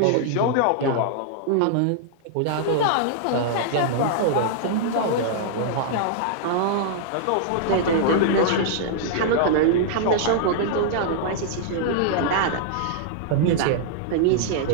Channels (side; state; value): both; different; correlation -0.01